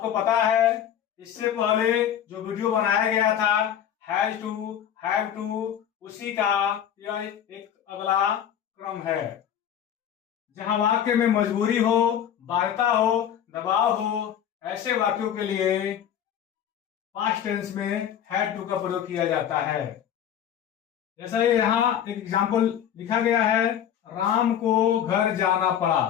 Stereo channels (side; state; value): right; quieter; 9.6 dB